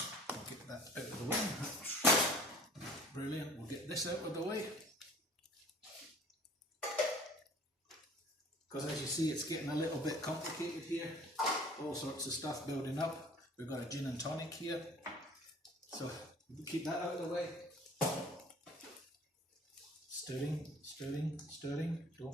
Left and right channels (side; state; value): both; normal; correlation 0.49